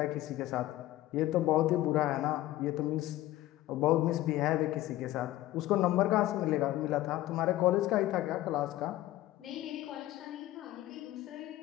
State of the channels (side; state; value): right; quieter; 15.6 dB